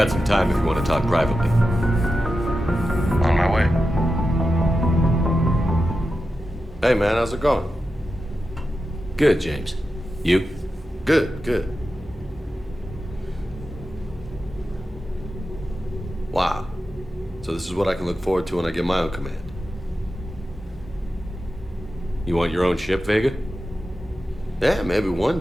some time if you want to talk privately. On my way. Hey man, how's it going? Good, James. You? Good, good. Wow. So this is what I can look forward to when I get my own command. You want your own ship, Vega? Yeah, maybe one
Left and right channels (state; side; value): normal; both; correlation 0.91